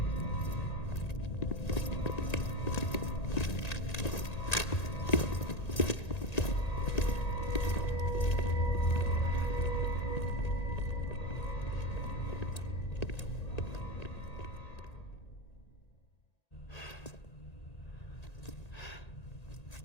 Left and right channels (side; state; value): right; late; 1.9 ms